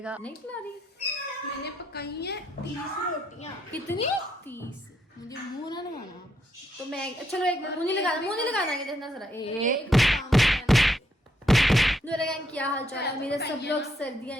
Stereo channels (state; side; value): normal; both; correlation 0.76